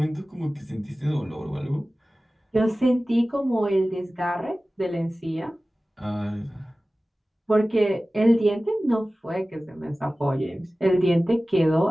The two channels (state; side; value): normal; both; correlation 0.97